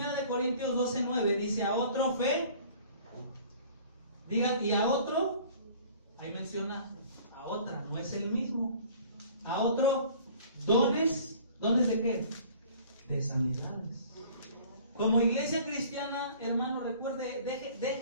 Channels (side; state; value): both; inverted; correlation -0.50